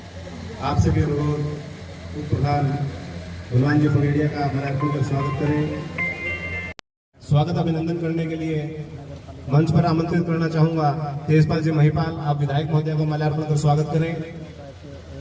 आपसे भी अनुरोध उप प्रधान हनुमान जी पगड़िया का माल्यार्पण कर स्वागत करें। स्वागत अभिनंदन करने के लिए मंच पर आमंत्रित करना चाहूंगा तेजपाल जी महिपाल। आप विधायक महोदय को माल्यार्पण कर स्वागत करें।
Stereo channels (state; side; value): identical; both; correlation 1.00